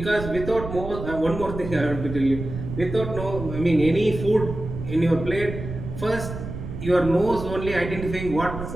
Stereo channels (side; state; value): right; noise; rumble, 8 dB below the sound